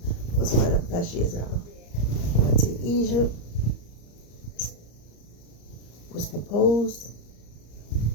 was one of the best years ever. I went to Egypt, was proposed.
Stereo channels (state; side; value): late; right; 34 ms